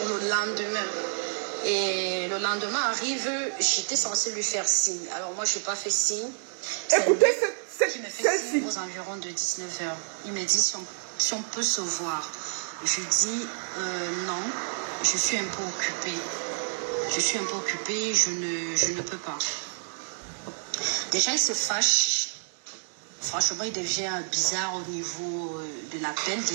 le lendemain. Et le lendemain arrive, j'étais censée lui faire signe. Alors moi, je n'ai pas fait signe. Écoutez qui me fait celle-ci. signe aux environs de 19h. Il me dit si on peut se voir. Je dis non, je suis un peu occupée. Je suis un peu occupée, je ne peux pas. Déjà, il se fâche. Franchement, il devient bizarre au niveau de l'appel.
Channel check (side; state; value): left; silent; 59 dB below the other